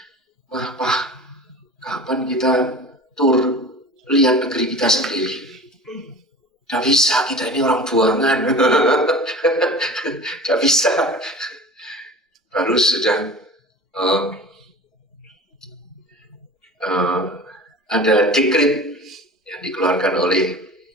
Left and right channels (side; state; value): both; normal; correlation 0.38